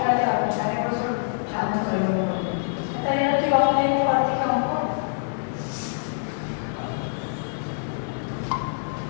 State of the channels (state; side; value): silent; right; 58 dB below the other